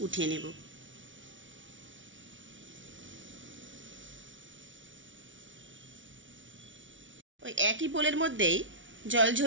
উঠিয়ে নেব। ওই একই বোলের মধ্যেই জল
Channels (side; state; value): left; late; 0.56 ms